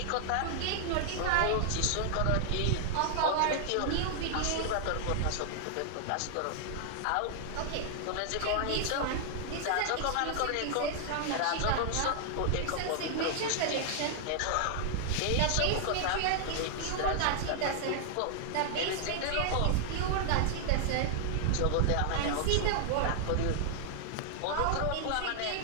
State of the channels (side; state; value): both; different; correlation 0.00